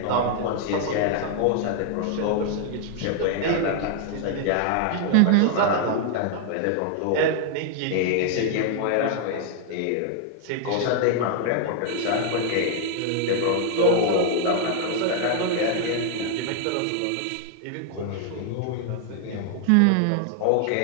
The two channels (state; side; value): different; both; correlation 0.00